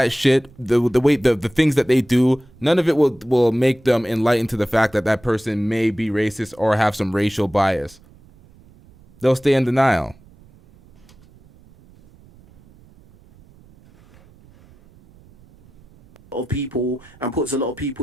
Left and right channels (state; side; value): noise; right; rumble, 27 dB below the sound